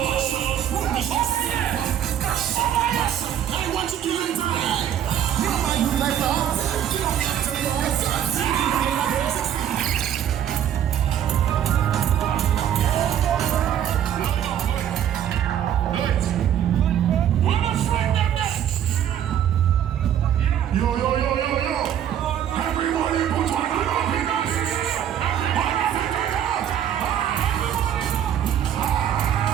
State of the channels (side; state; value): left; quieter; 10.1 dB